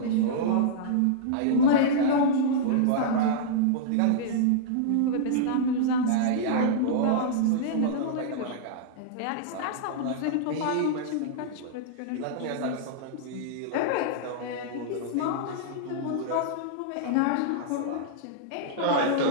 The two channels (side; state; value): both; different; correlation -0.02